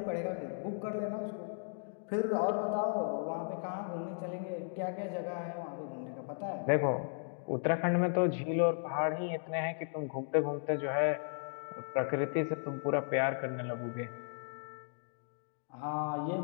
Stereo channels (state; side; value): silent; right; digital silence